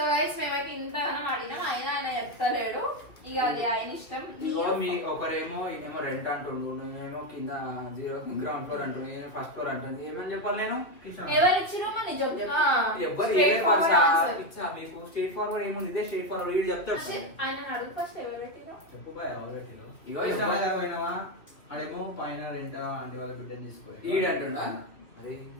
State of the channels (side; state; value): right; late; 2.6 ms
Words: గైస్ మేమైతే ఇంతగానం ఆడినాం అయినా ఆయన చెప్తలేడు ఇక అది ఆయన ఇష్టం మీ ఒకరేమో ఈయనేమో రెంట్ అంటుండు నేనేమో కింద గ్రౌండ్ ఫ్లోర్ అంటుండు నేను ఫస్ట్ ఫ్లోర్ అంటుండు ఏమని చెప్పాలి నేను ఎవరు ఇచ్చిరో మన నిజం చెప్పు ఎవ్వరు Straight forward answer. ఇచ్చా మీకు స్ట్రేట్ ఫార్వర్డ్ ఏముంది ఇదే స్ట్రేట్ ఫార్వర్డ్ వీడు చెప్తాడు ఆయన అడుగు ఫస్ట్ ఎవరు పెట్టిరో చెప్పు బాయ్ ఎవరు పెట్టినావు ఇగో కృష్ణమ్మ గారు పోయినావా అడేమో పైన రెంట అంటే వాళ్ళ బిడ్డని తీసుకోవాలి ఈడు అంటుండా అరే